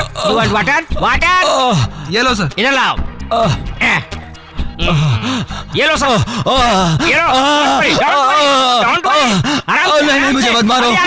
ये लो सर। इधर लाओ। ये लो सर, ये लो। Don't worry. आराम से, नहीं, मुझे मत मारो।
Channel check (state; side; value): identical; both; correlation 1.00